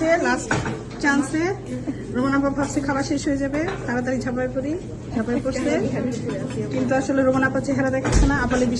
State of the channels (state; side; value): identical; both; correlation 1.00